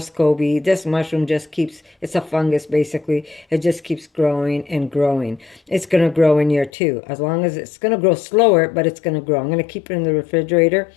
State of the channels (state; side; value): drops out; right; at 6.7 s